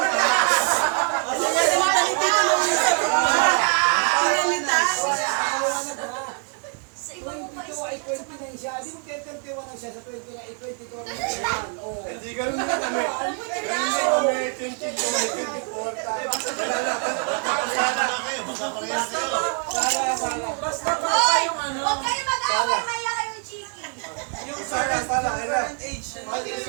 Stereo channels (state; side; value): quieter; left; 37.6 dB